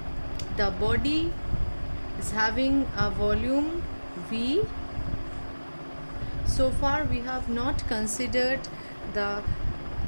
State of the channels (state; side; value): inverted; both; correlation -1.00